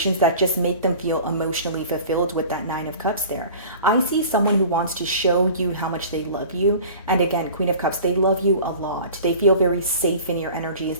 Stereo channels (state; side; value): inverted; both; correlation -0.42